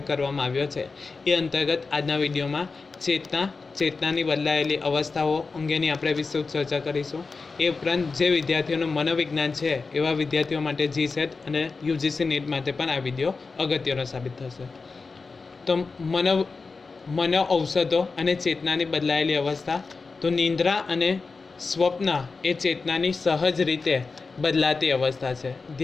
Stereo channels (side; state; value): right; quieter; 4.3 dB